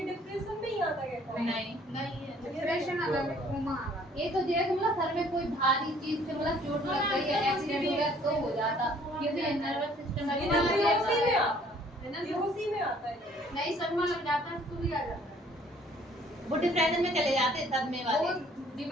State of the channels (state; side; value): normal; both; correlation 0.58